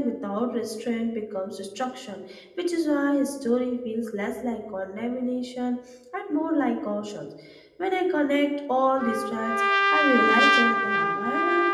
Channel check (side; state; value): both; identical; correlation 1.00